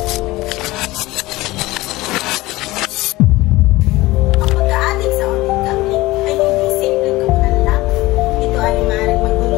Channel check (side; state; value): right; quieter; 19.3 dB